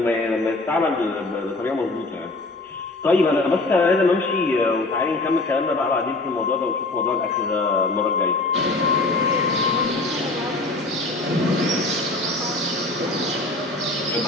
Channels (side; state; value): right; quieter; 3.0 dB